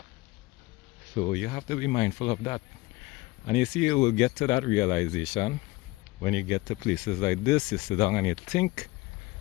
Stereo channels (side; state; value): right; quieter; 20.9 dB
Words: So you have to be mindful of that. And you see, you will get to that realization when you get to places like this. You sit down and you think,